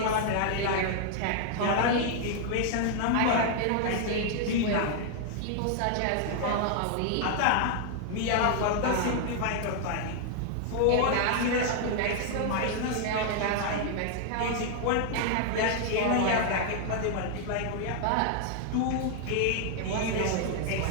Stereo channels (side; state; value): both; different; correlation 0.00